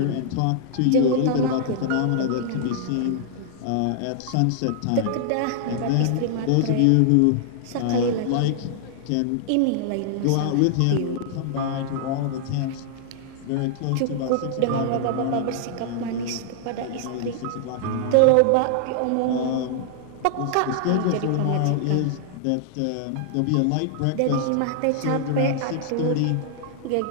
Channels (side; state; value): both; different; correlation -0.01